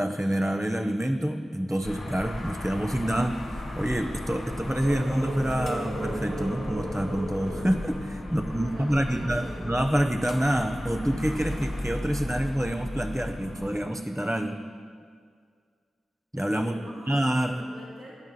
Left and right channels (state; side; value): normal; both; correlation 0.96